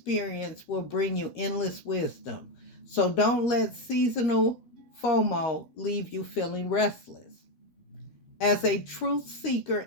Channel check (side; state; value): right; late; 13 ms